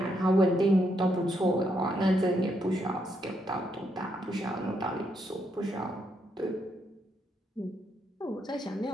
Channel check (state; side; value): normal; both; correlation 0.78